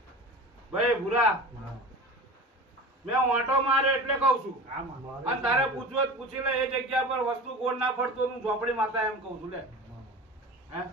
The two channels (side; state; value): both; normal; correlation 0.34